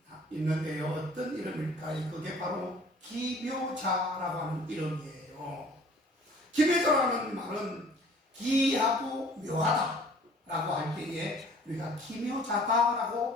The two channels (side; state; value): both; normal; correlation 0.52